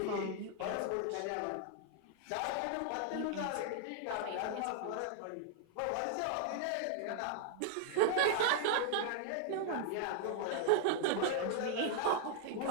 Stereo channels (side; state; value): both; different; correlation 0.00